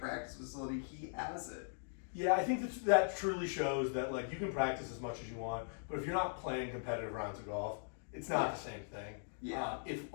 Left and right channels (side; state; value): right; silent; digital silence